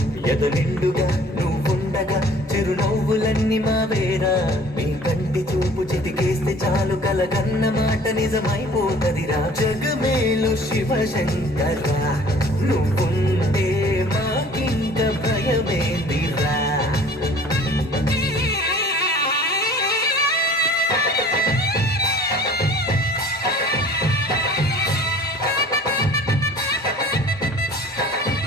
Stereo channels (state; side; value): normal; both; correlation 0.49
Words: ఎదు నిండుగా నువ్వుండగా చిరునవ్వులన్నీ మావేరా మీ కంటి చూపు చిటికేస్తే చాలు కలగన్న మాట నిజమైపోతదిరా జగమేలు శివశంకర్రా నువ్వుంటే మాకింక భయమేందిరా